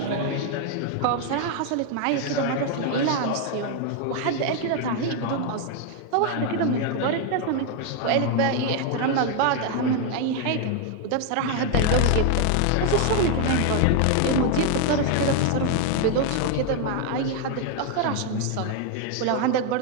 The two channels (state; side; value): different; both; correlation 0.01